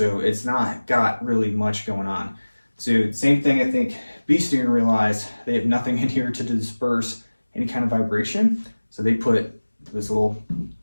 it's not got really much going on. So same thing, I think Bee Stinger realized they have nothing in here to disperse any kind of vibration, so they put this little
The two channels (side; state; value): both; inverted; correlation -1.00